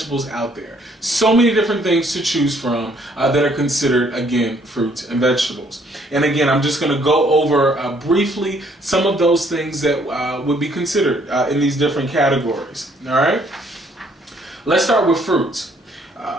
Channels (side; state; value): both; normal; correlation 0.65